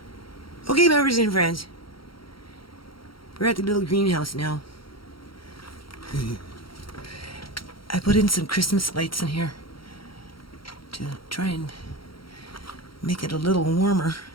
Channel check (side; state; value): right; late; 0.74 ms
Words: Okay, members and friends, we're at the little greenhouse now. I put in some Christmas lights in here to try and make it a little warmer,